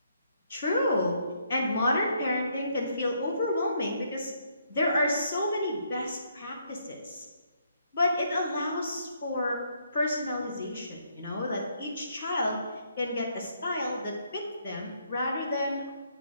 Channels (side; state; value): both; inverted; correlation -0.71